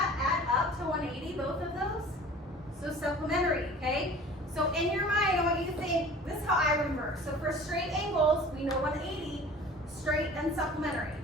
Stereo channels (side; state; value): both; normal; correlation 0.44